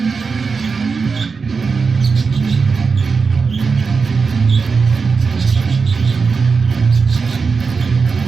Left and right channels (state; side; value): quieter; left; 4.9 dB